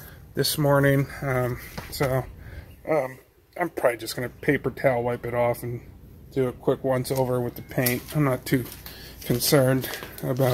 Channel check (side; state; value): both; identical; correlation 1.00